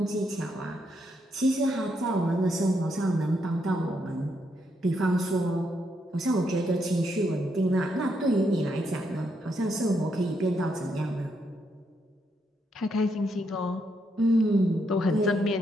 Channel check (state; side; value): normal; both; correlation 0.78